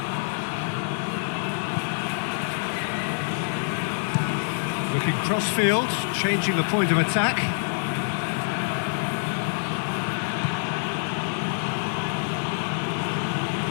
Looking cross-field, changing the point of attack.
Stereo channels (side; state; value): right; silent; digital silence